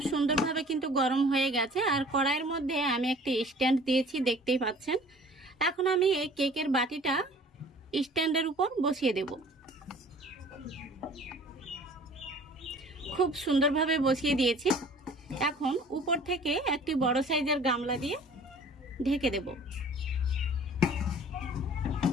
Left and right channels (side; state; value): both; normal; correlation 0.49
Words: সুন্দরভাবে কিন্তু গরম হয়ে গেছে আর কড়াইয়ের মধ্যে আমি একটি স্ট্যান্ড দিয়েছি, দেখতেই পাচ্ছেন। এখন আমি এই কেকের বাটিটা স্ট্যান্ডের উপর বসিয়ে দেব। খুব সুন্দরভাবে বসিয়ে দিয়েছি। এখন উপর থেকে একটি বড় সাইজের গামলা দিয়ে ঢেকে দেব।